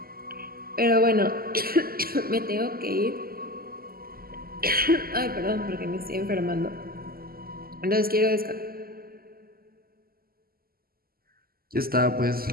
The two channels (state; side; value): late; left; 0.43 ms